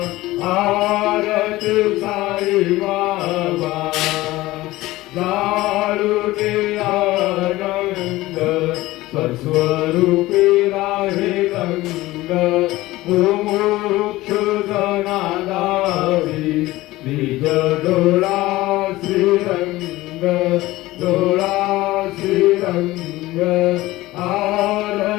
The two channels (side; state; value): right; quieter; 18.1 dB